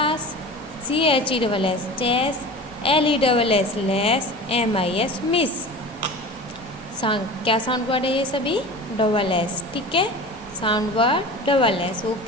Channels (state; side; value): normal; both; correlation 0.35